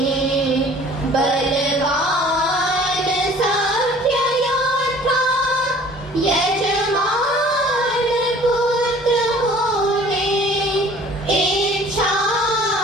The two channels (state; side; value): normal; both; correlation 0.50